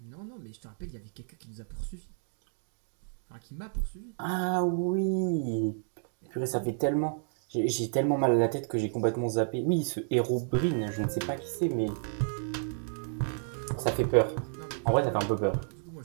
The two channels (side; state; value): left; silent; digital silence